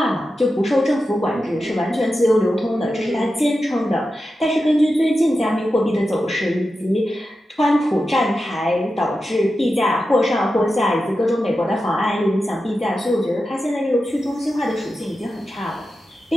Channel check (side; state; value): both; normal; correlation 0.91